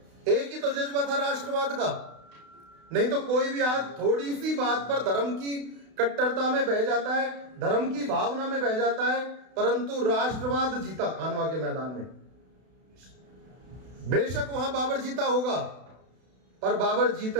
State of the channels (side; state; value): left; late; 32 ms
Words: एक ही तो जज्बा था राष्ट्रवाद का। नहीं तो कोई भी आज थोड़ी सी बात पर धर्म की कट्टरता में बह जाता है, धर्म की भावना में बह जाता है, परंतु राष्ट्रवाद जीता खानवा के मैदान में। बेशक वहां बाबर जीता होगा, पर बाबर जीत